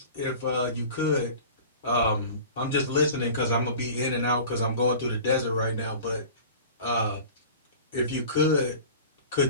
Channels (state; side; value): inverted; both; correlation -0.40